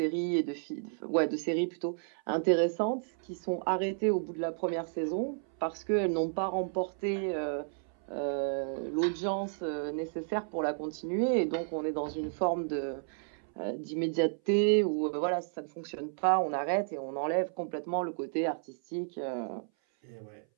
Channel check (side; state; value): left; silent; 56 dB below the other